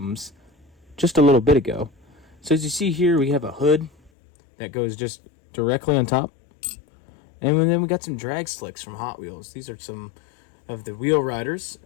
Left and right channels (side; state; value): right; drops out; at 4.1 s